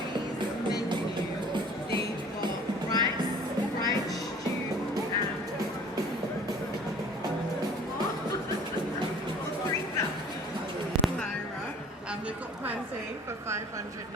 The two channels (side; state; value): both; normal; correlation 0.50